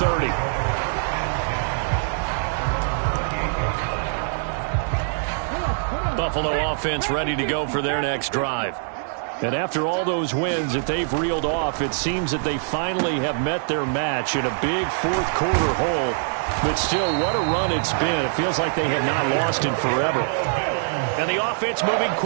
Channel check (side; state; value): left; silent; digital silence